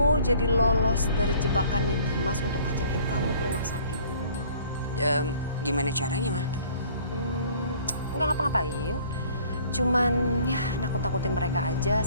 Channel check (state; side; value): inverted; both; correlation -0.54